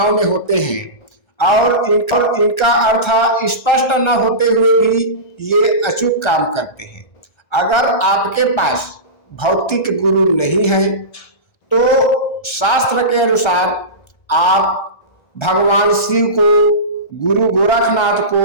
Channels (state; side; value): late; right; 1.3 ms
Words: में होते हैं और इनका अर्थ स्पष्ट न होते हुए भी ये अचूक काम करते हैं। अगर आपके पास भौतिक गुरु नहीं है तो शास्त्र के अनुसार आप भगवान शिव को, गुरु गोरखनाथ